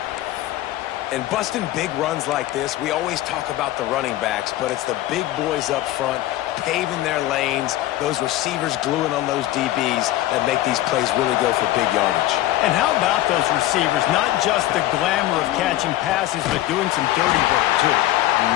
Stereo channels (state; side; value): quieter; right; 15.1 dB